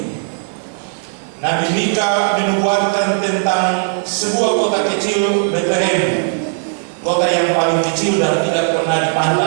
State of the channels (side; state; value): left; silent; digital silence